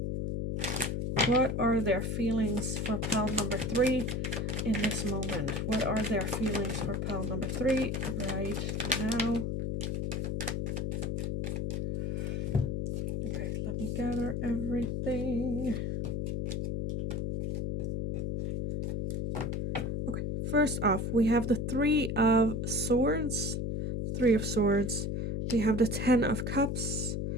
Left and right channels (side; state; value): left; noise; hum, 1 dB below the sound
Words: What are their feelings for pile number 3 in this moment? What are their feelings for pile number 3 right now? Okay, let me gather everything. Okay, first off, we have the Three of Swords. Three of Swords. We have the Ten of Cups.